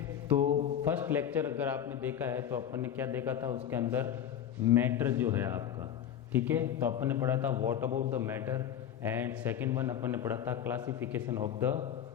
तो फर्स्ट लेक्चर अगर आपने देखा है तो अपन ने क्या देखा था, उसके अंदर मैटर जो है आपका, ठीक है। तो अपन ने पढ़ा था what about the matter, and second one अपन ने पढ़ा था क्लासिफिकेशन ऑफ द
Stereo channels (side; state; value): right; quieter; 9.7 dB